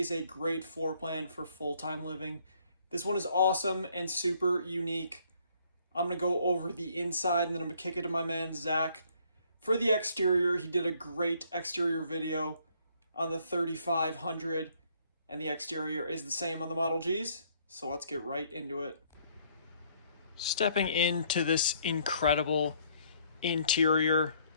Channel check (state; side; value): inverted; both; correlation -0.64